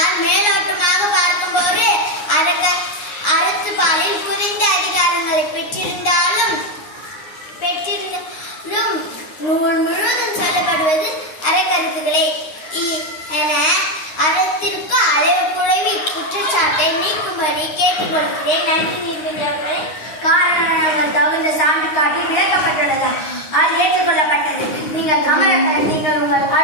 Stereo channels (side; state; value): right; late; 9.6 ms